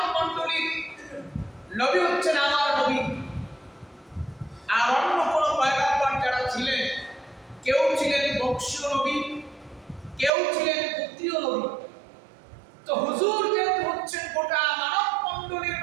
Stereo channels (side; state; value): left; drops out; at 10.3 s